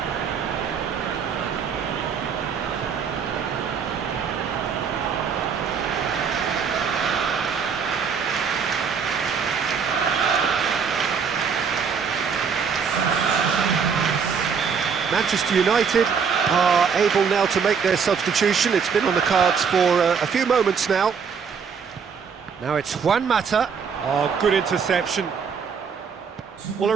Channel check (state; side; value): quieter; left; 6.4 dB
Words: Manchester United are able now to make their substitution. It's been on the cards for a few moments now. Now it's Juan Mata. Oh, good interception. Well, it